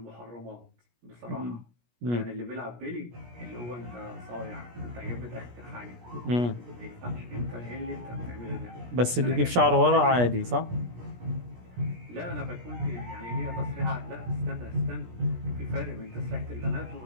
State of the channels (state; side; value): late; left; 17 ms